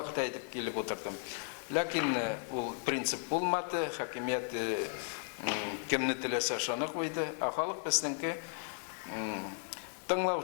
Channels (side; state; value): right; silent; 54 dB below the other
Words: әйтеп килеп утырдым. Ләкин ул принцип булмады, хакимият кемне теләсә шуны куйды, халык безнеңке